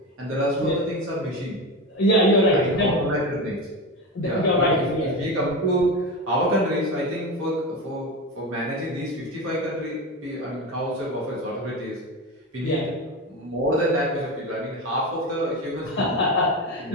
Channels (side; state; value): both; normal; correlation 0.21